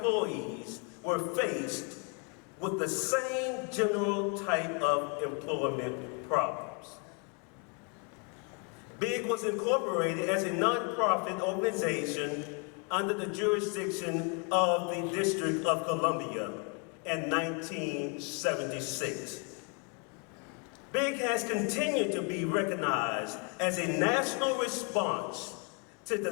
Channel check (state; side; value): quieter; right; 36.1 dB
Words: were faced with the same general type of employment problems. BIG was incorporated as a nonprofit organization under the jurisdiction of the District of Columbia in 1976. BIG has continued to be recognized as a national response to the